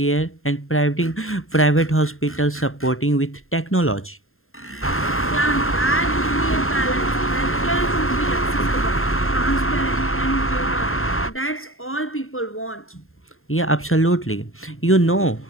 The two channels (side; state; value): right; late; 0.61 ms